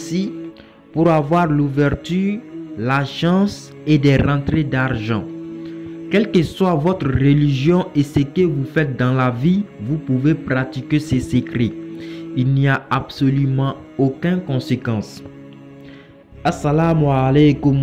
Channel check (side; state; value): both; identical; correlation 1.00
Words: pour avoir l'ouverture, la chance et des rentrées d'argent. Quelle que soit votre religion et ce que vous faites dans la vie, vous pouvez pratiquer ces secrets. Il n'y a absolument aucune conséquence. Assalamu